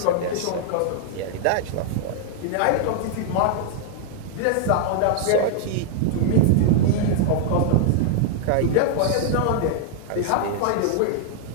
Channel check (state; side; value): different; both; correlation -0.01